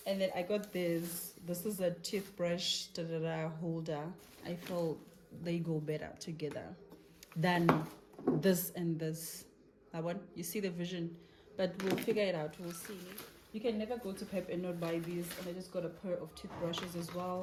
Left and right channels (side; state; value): both; identical; correlation 1.00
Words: And then I got this. This is a toothbrush holder. I feel they go better together than this and this. That one, you see the vision, but we'll figure it out. We'll see. You can never go to Pep and not buy these. And I just got a pair of toothbrushes as